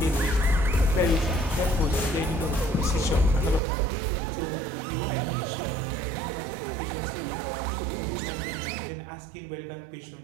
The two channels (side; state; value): left; drops out; at 3.6 s